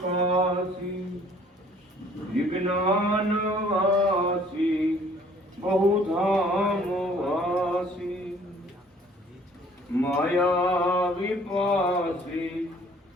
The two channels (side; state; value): both; normal; correlation 0.56